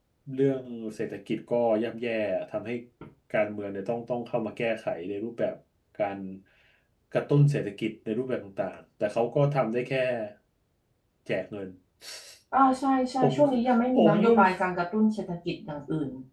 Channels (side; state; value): both; identical; correlation 1.00